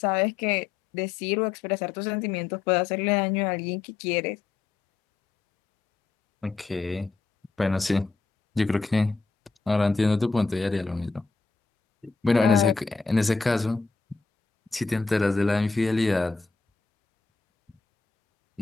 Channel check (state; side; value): quieter; right; 4.5 dB